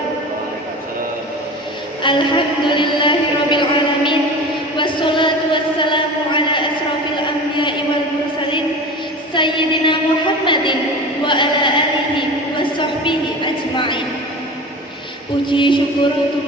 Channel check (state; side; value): normal; both; correlation 0.34